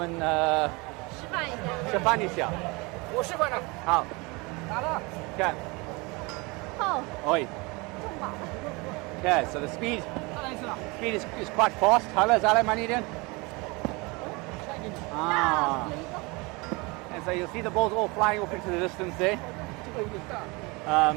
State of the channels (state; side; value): quieter; left; 26.5 dB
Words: 示范一下？我示范了。好。打了。看。好。oi. Okay, so the speed is quite fast. Hello, Zale Maniden. And so you'll see the balls all flying off into the distance there.